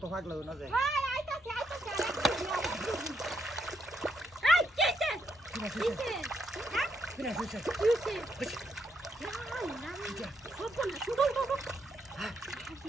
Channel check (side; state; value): both; normal; correlation 0.78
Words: ভাগ লাগো না যায় ভাই আইতাছে এই কেছে কিছে হ্যাঁ কিনা হইছে কিছে না সব না শুধু বাবা